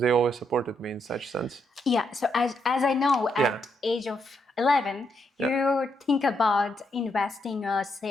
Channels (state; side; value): normal; both; correlation 0.78